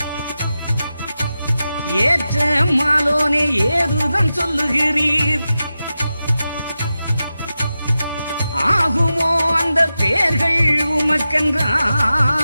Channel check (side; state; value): both; inverted; correlation -0.92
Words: ஏற்ற மாலோனே ஏதுதான் சொல்லுகிறீர். ஆகுமோ அந்த பேர்கள்